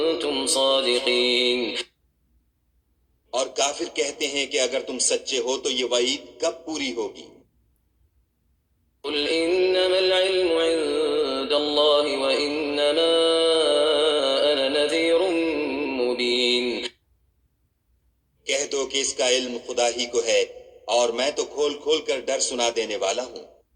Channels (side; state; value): both; identical; correlation 1.00